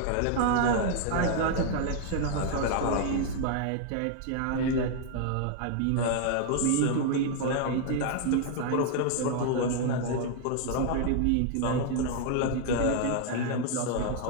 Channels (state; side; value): different; both; correlation 0.00